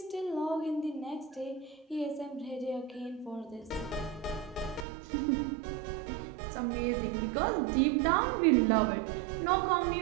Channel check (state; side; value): drops out; left; at 4.9 s